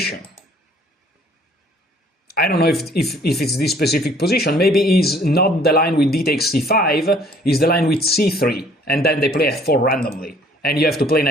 I don't know if it's this specific position. Maybe it's not the line with d takes c5, it's the line with c3, and then they play f4 randomly, and you have to play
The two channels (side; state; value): both; normal; correlation 0.58